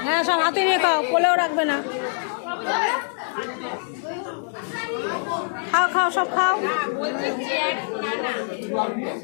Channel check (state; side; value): silent; right; digital silence